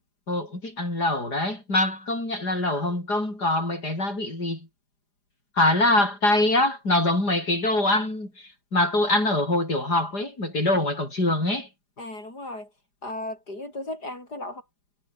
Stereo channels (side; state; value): right; late; 4.9 ms